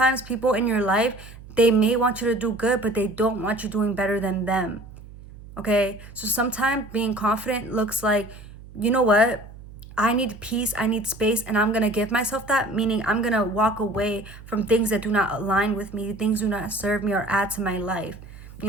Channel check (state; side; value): noise; right; hum, 17 dB below the sound